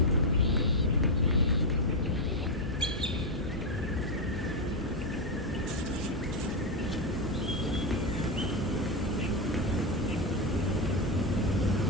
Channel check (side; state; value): both; normal; correlation 0.06